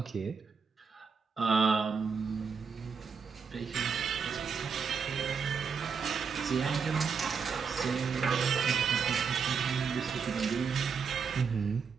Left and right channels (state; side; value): quieter; left; 5.9 dB